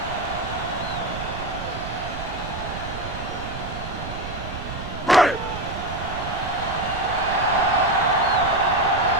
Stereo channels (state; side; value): noise; right; rumble, 9 dB below the sound